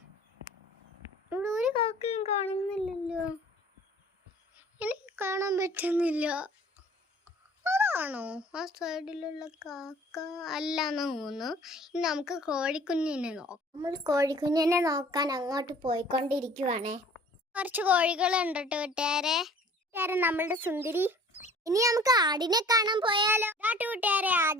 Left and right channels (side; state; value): both; normal; correlation 0.50